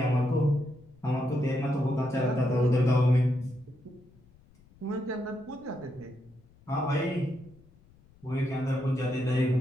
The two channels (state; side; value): noise; left; rumble, 28 dB below the sound